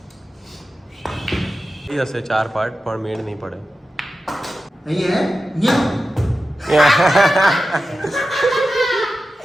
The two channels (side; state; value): both; normal; correlation 0.93